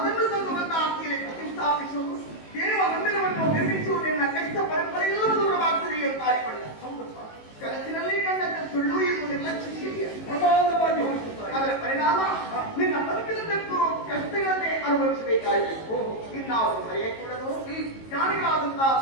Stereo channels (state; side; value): late; right; 18 ms